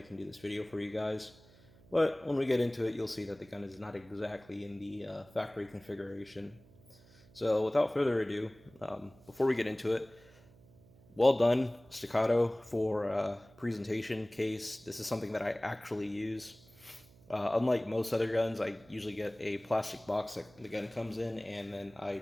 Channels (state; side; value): noise; right; hum, 25 dB below the sound